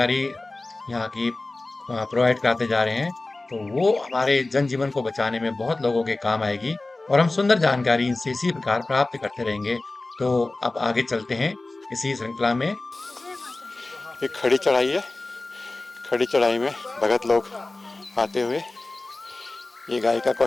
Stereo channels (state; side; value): quieter; right; 3.1 dB